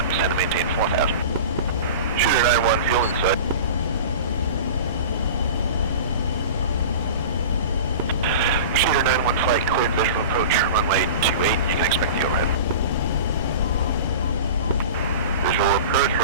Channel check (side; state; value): both; inverted; correlation -0.34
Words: send and maintain 4,000. Shooter 9-1, fuel inside. Shooter 9-1, flight cleared, visual approach, runway 28, you can expect the overhead. Visual approach,